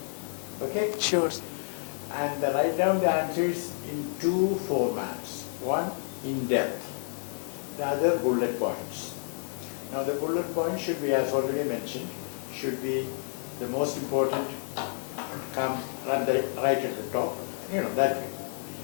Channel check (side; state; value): right; silent; digital silence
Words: Okay? Sure. And write down the answers in 2 formats. One, in depth. The other, bullet points. Now the bullet points should be, as already mentioned, should be the most important, come right at the top, that way.